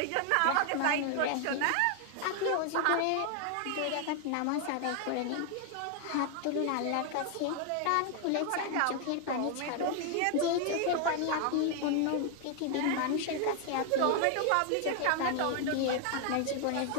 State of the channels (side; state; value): both; different; correlation 0.00